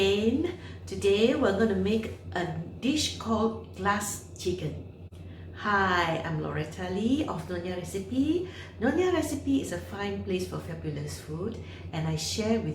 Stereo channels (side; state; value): both; identical; correlation 1.00